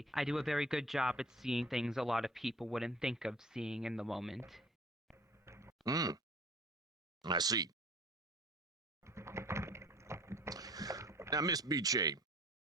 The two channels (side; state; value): both; normal; correlation 0.49